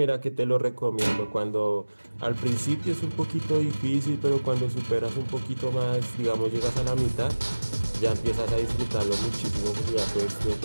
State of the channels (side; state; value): both; inverted; correlation -1.00